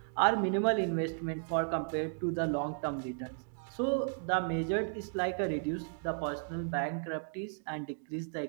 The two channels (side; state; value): left; silent; digital silence